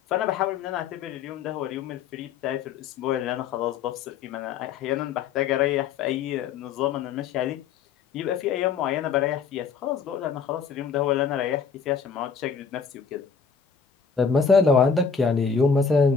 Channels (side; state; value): right; quieter; 6.0 dB